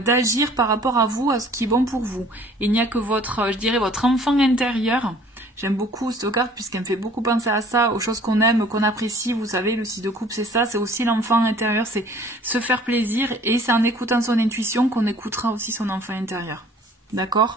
par rapport à vous, à ce qui est bon pour vous. Il n'y a que votre, je dirais, votre enfant intérieur. J'aime beaucoup cette carte puisqu'elle me fait beaucoup penser à ça, aux choses qu'on aime, qu'on apprécie. Vous savez, le 6 de coupe, c'est ça, c'est aussi l'enfant intérieur, c'est se faire plaisir, et c'est en écoutant son intuition qu'on écoutera aussi son enfant intérieur.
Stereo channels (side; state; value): both; normal; correlation 0.52